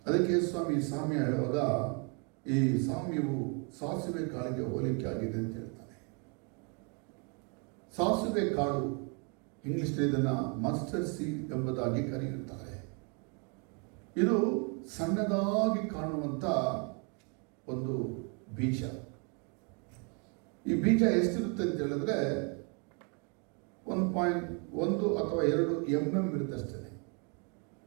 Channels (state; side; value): quieter; left; 36.1 dB